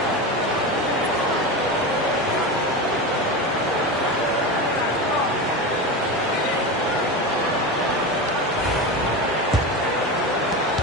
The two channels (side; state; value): both; normal; correlation 0.22